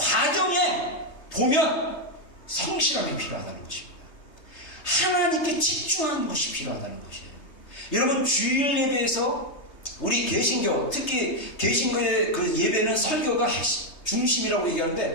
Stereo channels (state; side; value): late; right; 3.3 ms